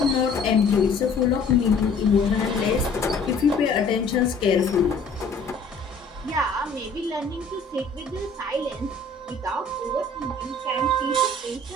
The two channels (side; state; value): right; quieter; 3.5 dB